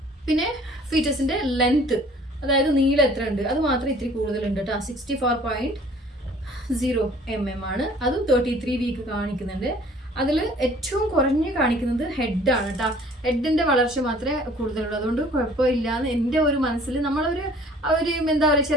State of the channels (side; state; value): both; normal; correlation 0.53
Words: പിന്നെ ഫീറ്റസിൻ്റെ ലെങ്ത്ത്, അതായത് നീളം എത്ര ഉണ്ട്, അത് മാത്രം ഇത്തിരി കൂടുതലുണ്ട് കേട്ടോ. 64.0 mm ആണ്. അതും 33 വീക്ക് കാണിക്കുന്നുണ്ട്. അതിൽ ഏറ്റവും കുറഞ്ഞ് കാണിക്കുന്നത് ഹെഡാണ് കേട്ടോ. ഹെഡിൻ്റെ വളർച്ച മാത്രമേ കൂടുതലുള്ളൂ. അതുകൊണ്ട് കുഴപ്പമില്ലാന്ന് എൻ്റെ ഒരു മനസ്സിൽ നമ്മളൊരു എന്താ പറയുക,